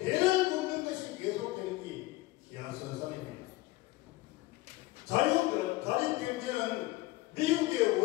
굽는 것이 계속되는 게 기하선상입니다. 자립경제는 미국의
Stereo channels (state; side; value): quieter; right; 19.4 dB